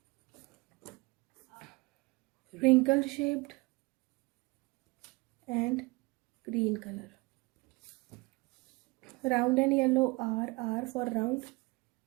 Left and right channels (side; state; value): left; quieter; 25.1 dB